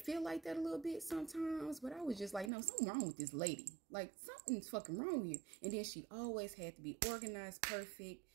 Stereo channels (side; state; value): left; drops out; at 2.5 s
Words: like that a little bit sometimes, but I was just like, no, something wrong with this lady. Like, something's fucking wrong with you. And then she always had to be organized, perfect,